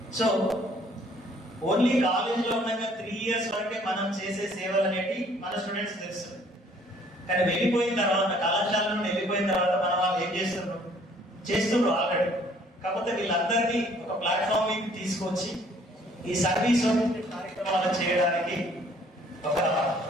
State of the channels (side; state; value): both; normal; correlation 0.59